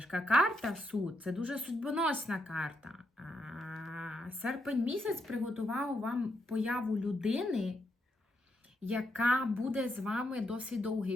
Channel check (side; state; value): both; normal; correlation 0.80